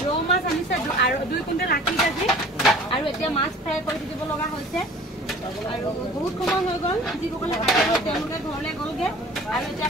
ৰৌ মাছ আনিছে আৰু 2 কুইণ্টেল 80 কেজি আৰু এতিয়া মাছ ফ্ৰাই কৰি দিব লগা হৈছে আৰু বহুত সময় হৈ গ'ল যিসকলে কাটিব তেওঁলোকে ঘৰলৈ গ'লগে আৰু এতিয়া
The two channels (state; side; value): normal; both; correlation 0.46